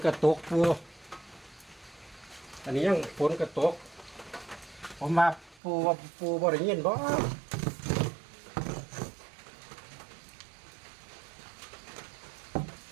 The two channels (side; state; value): left; drops out; at 5.6 s